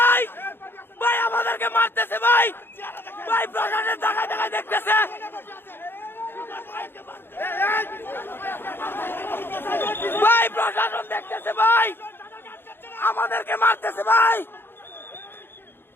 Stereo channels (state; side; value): late; right; 0.10 ms